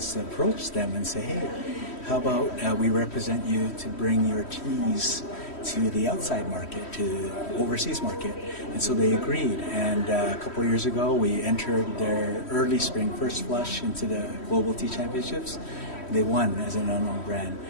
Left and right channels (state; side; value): late; right; 3.1 ms